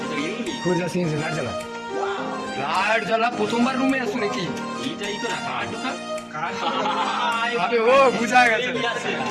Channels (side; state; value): both; identical; correlation 1.00